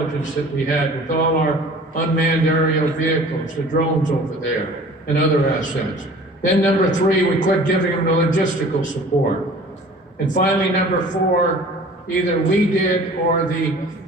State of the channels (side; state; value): both; normal; correlation 0.46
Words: that we had with all our unmanned aerial vehicles, the drones over there, and other assets. Then number three, we quit giving them the logistical support. And finally, number four, either we did or the